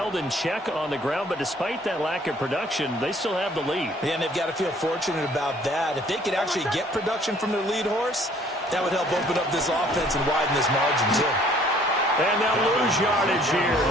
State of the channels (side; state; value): both; normal; correlation 0.58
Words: in check on the ground, but despite that lack of production, they still have the lead. Yeah, and they've got to feel fortunate about that. If they could actually get production from their lead horse, that would help open up this offense and widen this margin, too. And they'll lose yardage here.